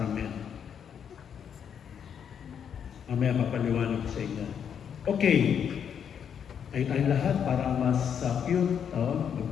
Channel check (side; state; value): right; quieter; 8.0 dB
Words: Mamaya papaliwanag ko sa inyo. Okay. Ay tayong lahat para mas cute.